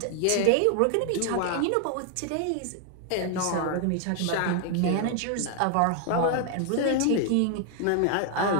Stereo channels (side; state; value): both; different; correlation 0.00